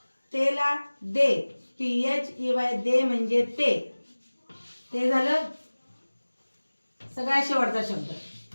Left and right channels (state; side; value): inverted; both; correlation -1.00